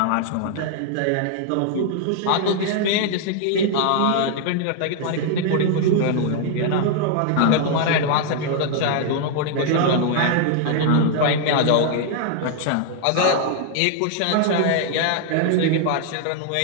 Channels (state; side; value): different; both; correlation 0.00